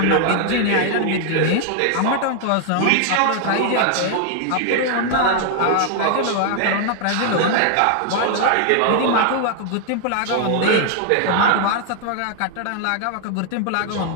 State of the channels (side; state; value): both; different; correlation 0.00